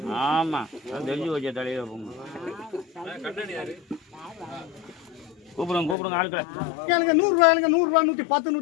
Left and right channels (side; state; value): right; drops out; at 6.0 s